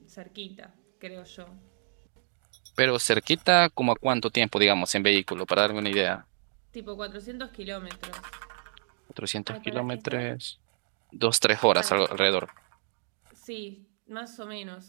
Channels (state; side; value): silent; left; digital silence